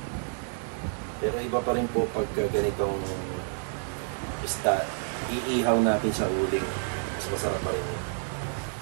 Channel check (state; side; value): silent; left; 58 dB below the other